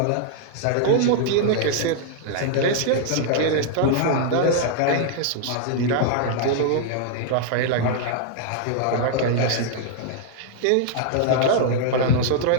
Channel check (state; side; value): different; both; correlation -0.01